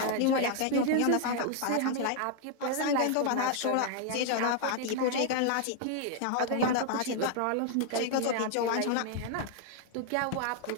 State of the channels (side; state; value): both; different; correlation 0.00